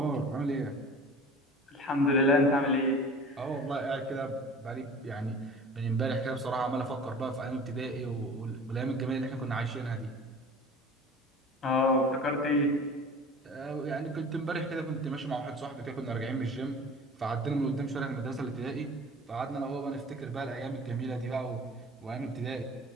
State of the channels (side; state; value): both; normal; correlation 0.41